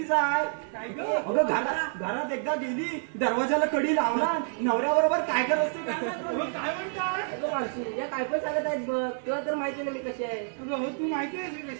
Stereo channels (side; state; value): left; silent; digital silence